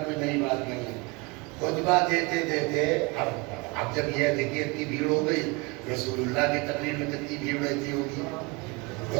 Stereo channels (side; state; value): left; quieter; 27.1 dB